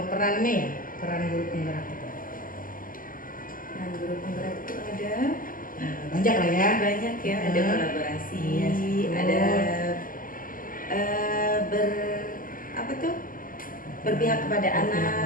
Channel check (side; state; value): right; late; 0.41 ms